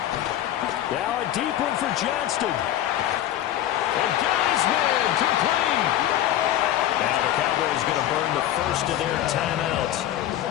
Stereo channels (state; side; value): quieter; right; 12.4 dB